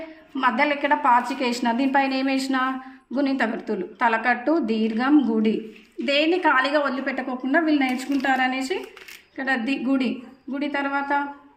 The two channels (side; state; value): both; identical; correlation 1.00